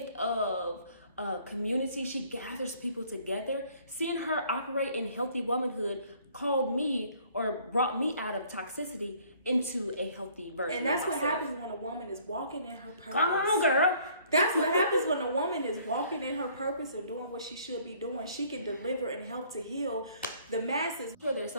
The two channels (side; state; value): both; inverted; correlation -0.59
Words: of community, she gathers people together. Seeing her operate in healthy womanhood called me or brought me out of toxicity into a healthy version. And that's of what myself. happens when a woman is walking in her purpose. Come on, girl. That's what happens when a woman is walking in her purpose and doing what she should be doing. She can deliver and help to heal the masses. I'm sure there's